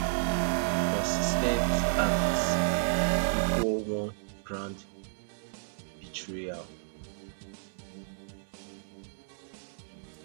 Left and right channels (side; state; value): left; silent; 57 dB below the other